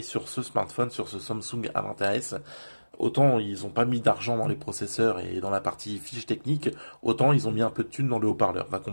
sur ce smartphone, sur ce Samsung A20s. Autant ils ont pas mis d'argent dans les processeurs et dans la partie fiche technique, autant ils ont mis un peu de thunes dans le haut-parleur. Va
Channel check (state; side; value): inverted; both; correlation -1.00